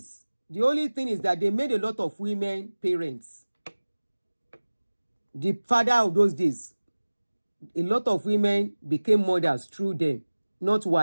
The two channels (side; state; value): both; inverted; correlation -1.00